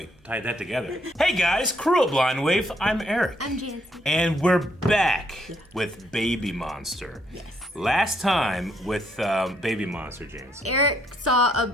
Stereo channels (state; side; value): normal; both; correlation 0.71